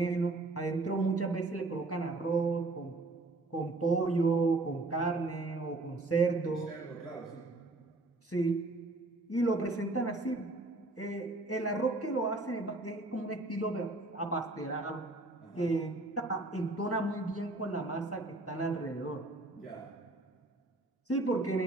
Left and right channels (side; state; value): left; quieter; 3.0 dB